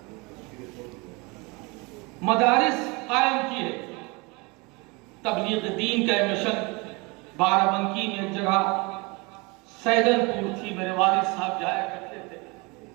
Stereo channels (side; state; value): left; quieter; 27.4 dB